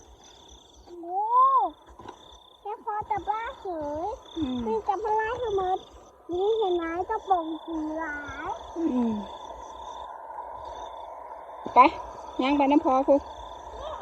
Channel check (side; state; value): both; identical; correlation 1.00